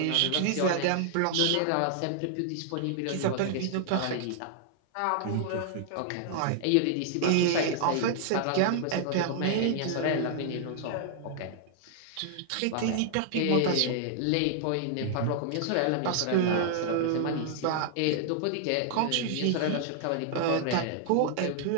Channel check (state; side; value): different; both; correlation -0.01